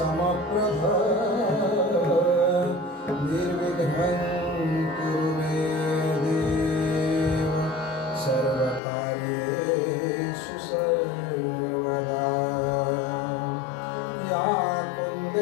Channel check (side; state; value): right; drops out; at 8.8 s